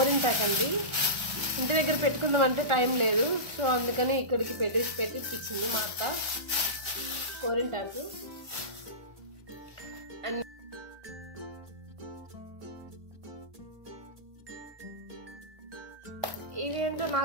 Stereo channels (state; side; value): late; left; 1.4 ms